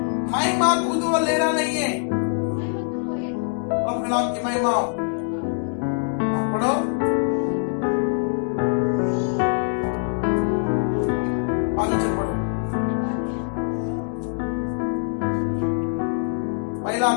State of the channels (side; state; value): right; silent; 63 dB below the other